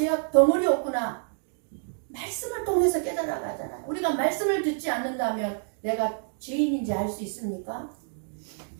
덩어리였구나. 말씀을 통해서 깨달아가잖아요. 우리가 말씀을 듣지 않는다면 내가 죄인인지 알 수 있습니까?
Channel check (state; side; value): silent; left; digital silence